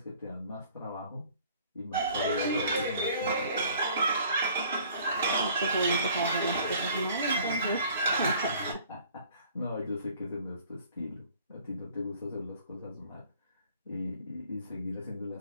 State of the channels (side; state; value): both; inverted; correlation -0.53